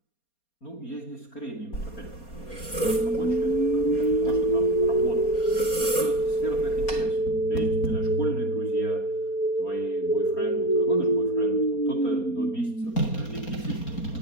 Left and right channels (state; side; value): late; right; 4.3 ms